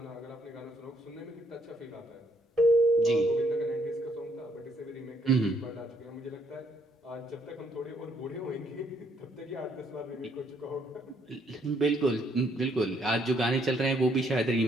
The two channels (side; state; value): both; normal; correlation 0.70